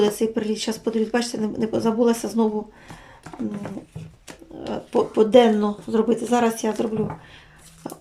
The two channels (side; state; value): both; identical; correlation 1.00